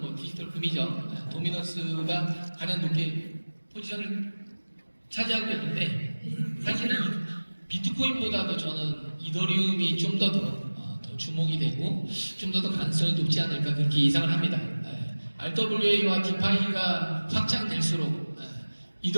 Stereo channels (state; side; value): inverted; both; correlation -1.00